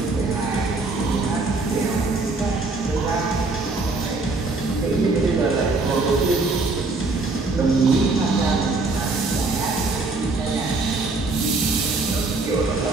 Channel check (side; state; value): left; quieter; 3.5 dB